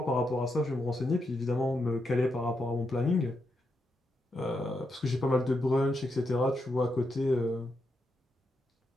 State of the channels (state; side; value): normal; both; correlation 0.83